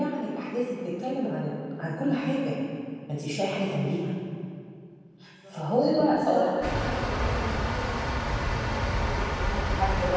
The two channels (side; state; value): both; identical; correlation 1.00